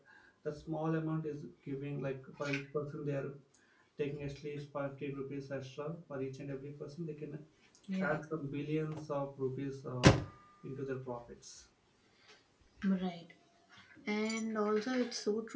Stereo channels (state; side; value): identical; both; correlation 1.00